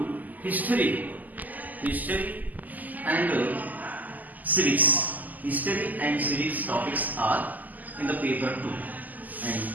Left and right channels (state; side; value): late; left; 0.082 ms